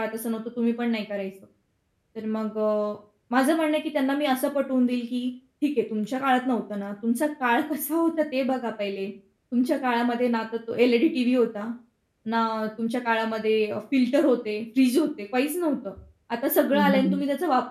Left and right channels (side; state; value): both; identical; correlation 1.00